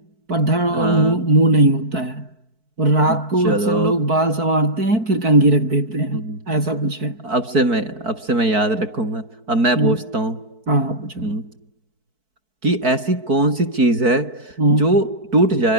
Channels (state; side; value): late; left; 4.6 ms